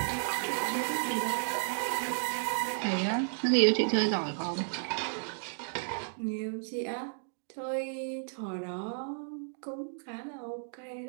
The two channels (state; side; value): silent; left; digital silence